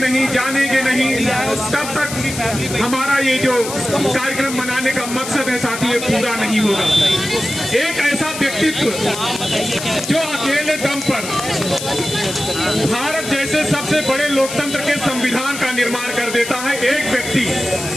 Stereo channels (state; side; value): noise; left; hiss, 8 dB below the sound